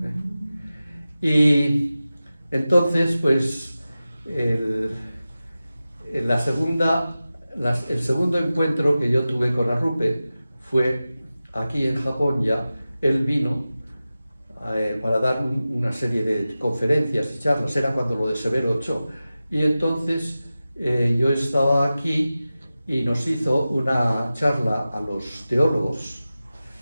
Y entonces, pues, el segundo encuentro que yo tuve con Arrupe fue aquí en Japón ya. Él vino para dar una serie de conferencias y charlas, era cuando lo de Severo Ochoa. Y entonces yo estaba aquí y nos hizo una charla a los teólogos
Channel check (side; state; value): both; inverted; correlation -0.95